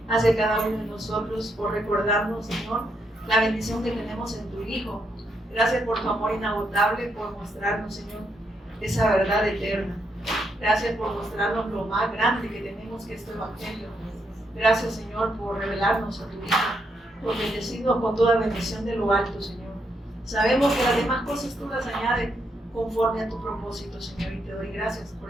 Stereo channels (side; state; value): both; normal; correlation 0.78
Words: hacia cada uno de nosotros, por recordarnos, Señor, la bendición que tenemos en tu Hijo. Gracias por tu amor inagotable, por mostrarnos, Señor, esa verdad eterna. Gracias por mostrarnos lo más grande que tenemos, que es tu Evangelio. Gracias, Señor, por revelarnos a tu Hijo, por bendecirnos con toda bendición de lo alto, Señor. Sabemos que las demás cosas tú las añades conforme a tu propósito, Señor, y te doy gracias